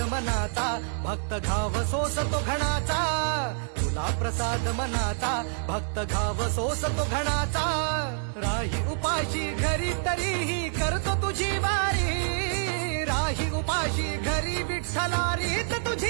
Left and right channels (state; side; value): silent; left; digital silence